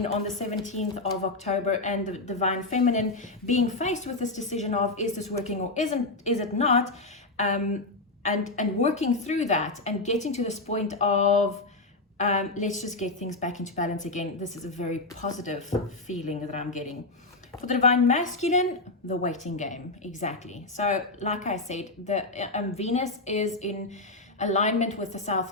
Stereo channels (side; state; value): right; quieter; 3.1 dB